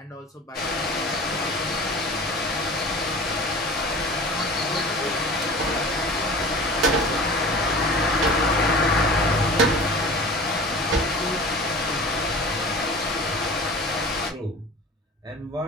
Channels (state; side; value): normal; both; correlation 0.39